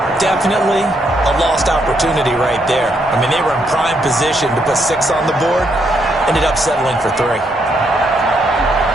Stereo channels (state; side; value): normal; both; correlation 0.76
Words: Definitely a lost opportunity right there. I mean, they were in prime position to put 6 on the board. Ended up settling for 3.